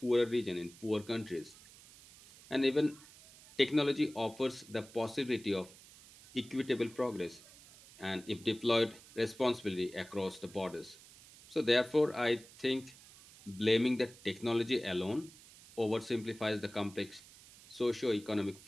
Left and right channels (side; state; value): right; noise; hiss, 21 dB below the sound